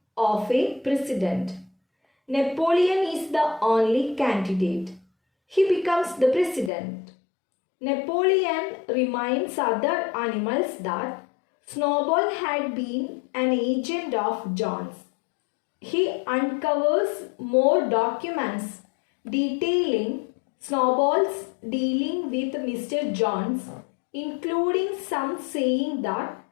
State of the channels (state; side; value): drops out; right; at 6.7 s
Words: of a president. Napoleon is the only candidate. He becomes the president. Napoleon reminds other animals that Snowball had been an agent of John's. He uncovers more documents detailing Snowball's dealing with Mr. Jones, including some saying that